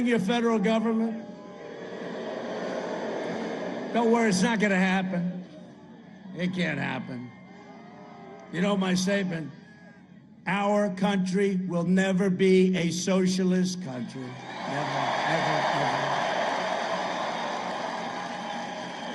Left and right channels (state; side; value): identical; both; correlation 1.00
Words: your federal government. Don't worry, it's not going to happen. It can't happen. You know my statement, our country will never be a socialist country. Never, ever.